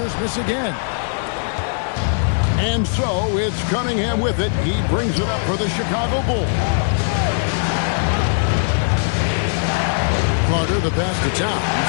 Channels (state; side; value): silent; right; digital silence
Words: miss again. And so it's Cunningham with it. He brings it up for the Chicago Bulls. Carter, the pass to Towns.